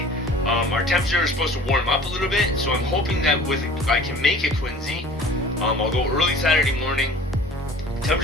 our temperature is supposed to warm up a little bit, so I'm hoping that I can make it Quincy. I'll go early Saturday morning.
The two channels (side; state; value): both; normal; correlation 0.45